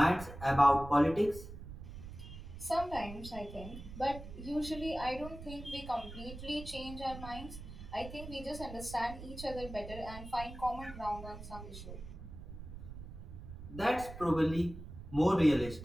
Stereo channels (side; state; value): right; noise; rumble, 12 dB below the sound